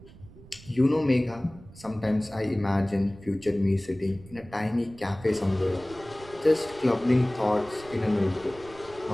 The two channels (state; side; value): noise; right; rumble, 20 dB below the sound